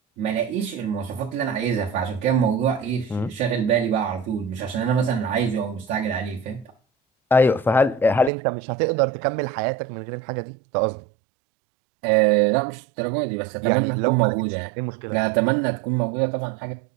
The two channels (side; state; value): left; drops out; at 8.3 s